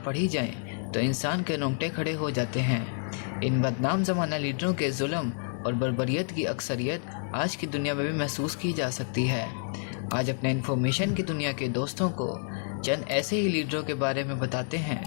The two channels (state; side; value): silent; right; digital silence